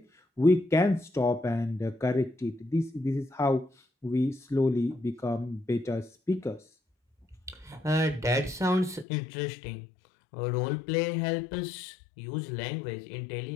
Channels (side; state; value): right; drops out; at 9.1 s